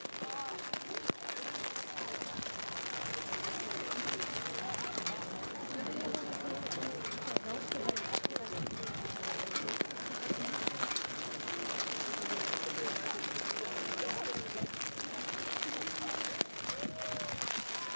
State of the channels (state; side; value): inverted; both; correlation -1.00